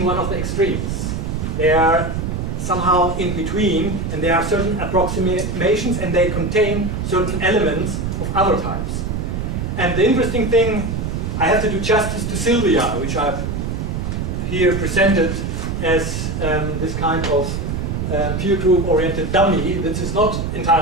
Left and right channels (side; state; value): right; noise; rumble, 3 dB below the sound